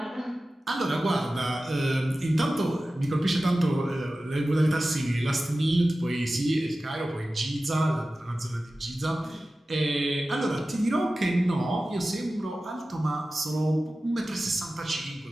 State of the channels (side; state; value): both; normal; correlation 0.95